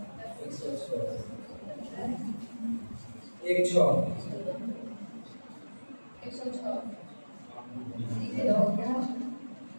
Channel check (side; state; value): both; inverted; correlation -1.00